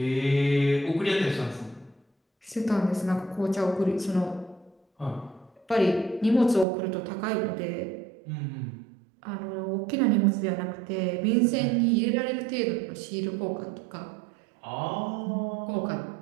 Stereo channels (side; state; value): left; drops out; at 6.7 s